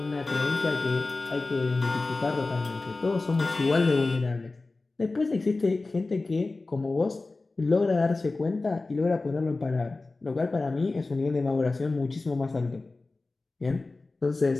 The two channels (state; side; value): quieter; right; 3.4 dB